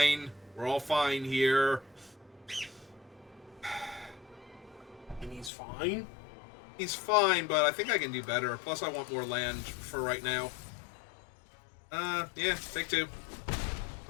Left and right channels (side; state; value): right; drops out; at 5.5 s